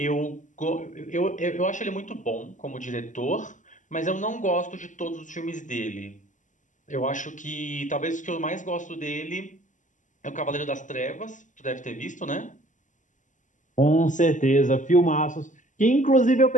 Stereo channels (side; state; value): right; late; 0.37 ms